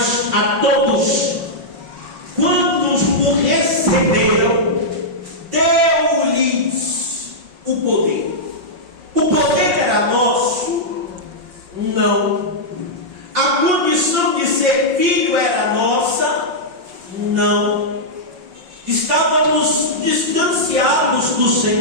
a todos, quando o receberam, deu-lhes o poder. O poder era nosso? Não. A condição de ser filho era nossa? Não. Estávamos distanciados do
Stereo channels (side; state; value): left; late; 5.5 ms